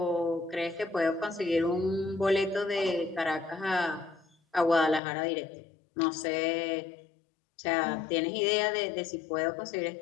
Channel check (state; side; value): drops out; right; at 5.0 s